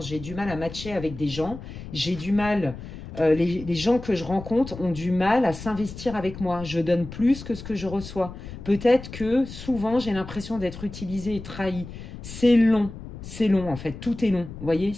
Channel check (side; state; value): left; noise; rumble, 12 dB below the sound